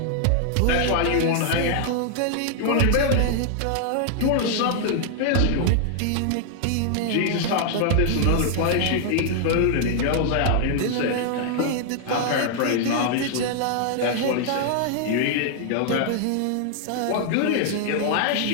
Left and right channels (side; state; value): both; different; correlation 0.00